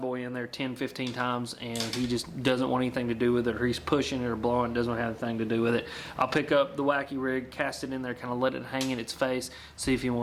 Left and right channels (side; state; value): both; identical; correlation 1.00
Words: in there 10-15 times and he just doesn't want anything to do with it, or he's pushing it or blowing, doesn't have anything to do with it. I'll pick up the Wacky Rig, cast it in there, kind of let it hang in its face, see if he